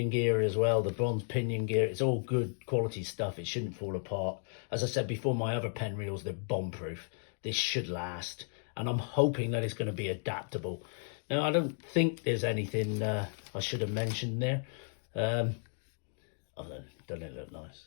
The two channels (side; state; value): right; silent; 55 dB below the other